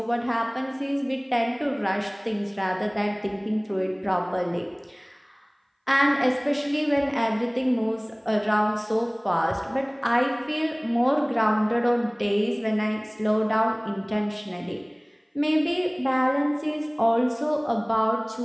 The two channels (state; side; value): identical; both; correlation 1.00